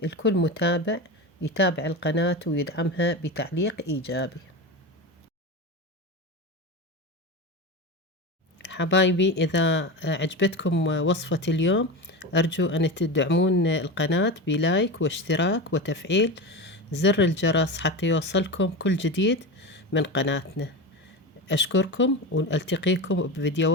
لكل متابع يتابع القناة ويدعمها بتعليق إيجابي. حبايبي، إذا عجبتكم وصفة اليوم أرجو أن تدعمون القناة بلايك واشتراك وتفعيل زر الجرس حتى يوصلكم كل جديد من قناتنا. أشكركم، وألتقيكم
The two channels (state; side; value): normal; both; correlation 0.23